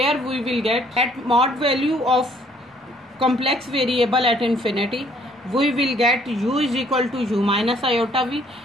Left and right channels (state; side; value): normal; both; correlation 0.62